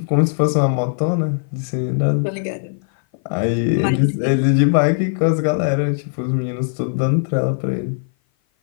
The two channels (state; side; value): silent; right; 57 dB below the other